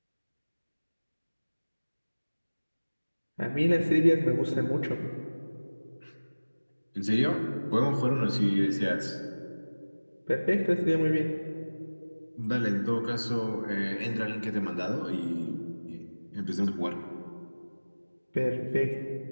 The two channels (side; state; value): both; inverted; correlation -1.00